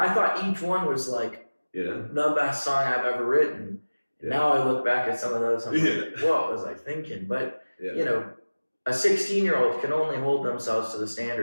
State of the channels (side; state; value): both; inverted; correlation -1.00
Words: thought each one was like the best song I've ever written. And now I look back at some of those, I'm like, what was I thinking? But, a 16-year-old can only hold themselves to the